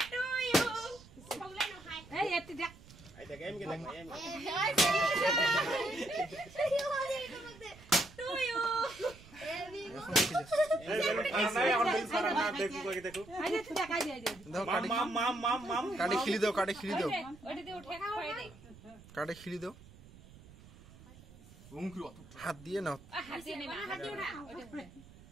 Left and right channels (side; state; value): right; noise; rumble, 21 dB below the sound